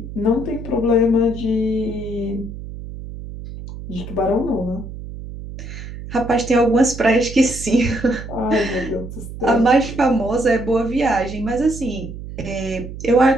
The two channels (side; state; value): right; noise; hum, 11 dB below the sound